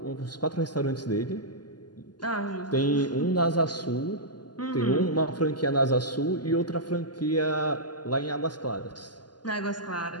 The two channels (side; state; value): right; late; 0.70 ms